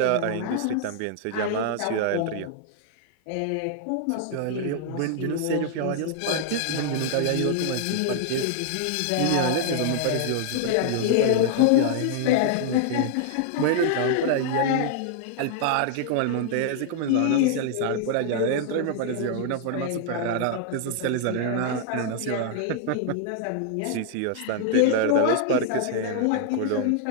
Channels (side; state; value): both; different; correlation -0.01